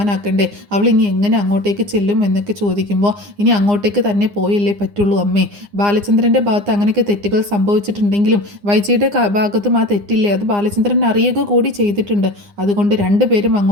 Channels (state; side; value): late; left; 9.8 ms